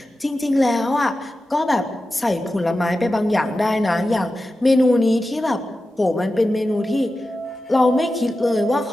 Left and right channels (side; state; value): both; normal; correlation 0.93